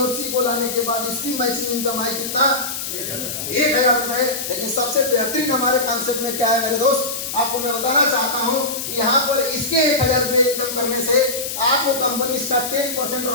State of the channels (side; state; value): left; noise; hiss, 5 dB below the sound